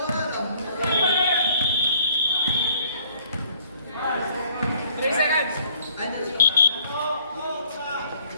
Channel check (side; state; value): both; inverted; correlation -0.60